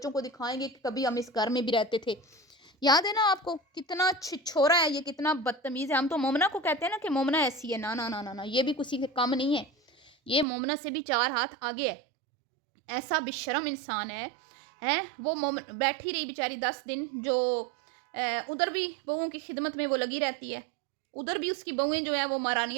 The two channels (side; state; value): left; drops out; at 10.5 s